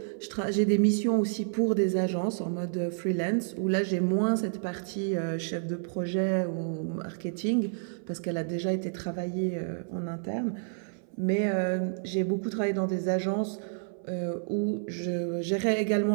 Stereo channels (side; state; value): left; silent; 57 dB below the other